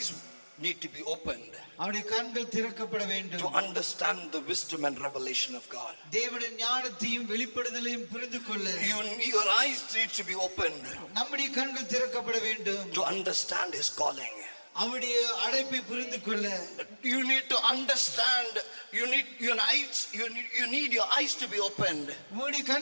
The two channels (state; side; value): inverted; both; correlation -1.00